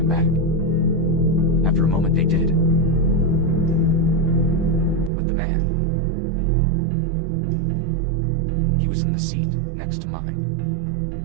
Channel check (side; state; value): left; drops out; at 5.1 s